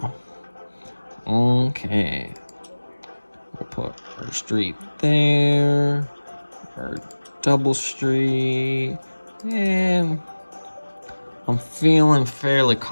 Okay. We'll put our street there, our double street, and I'm feeling fairly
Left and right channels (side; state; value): both; inverted; correlation -1.00